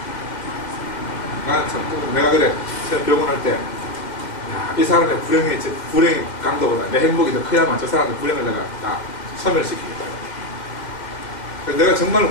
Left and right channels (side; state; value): right; late; 2.0 ms